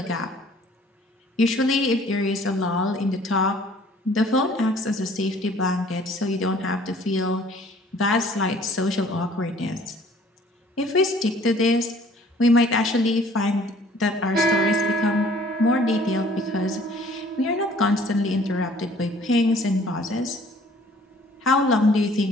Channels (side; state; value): both; normal; correlation 0.55